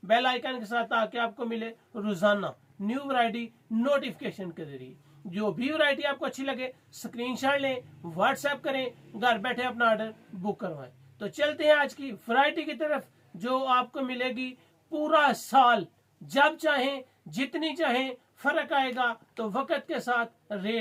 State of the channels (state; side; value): identical; both; correlation 1.00